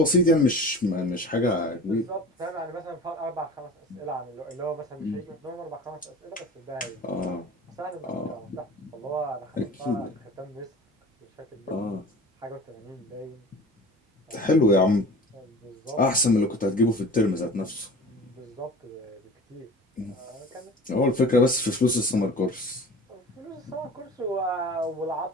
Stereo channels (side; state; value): both; normal; correlation 0.39